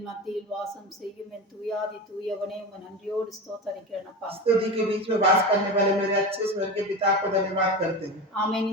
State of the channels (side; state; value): both; normal; correlation 0.24